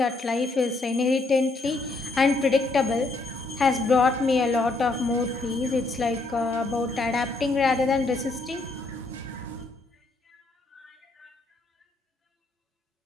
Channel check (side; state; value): right; quieter; 3.3 dB